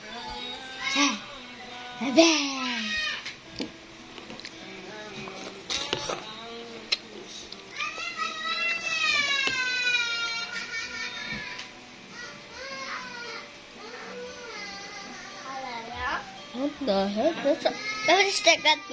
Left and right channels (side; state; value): both; identical; correlation 1.00